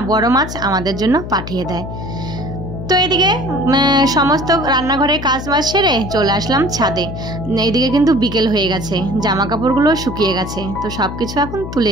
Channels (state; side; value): noise; left; hum, 9 dB below the sound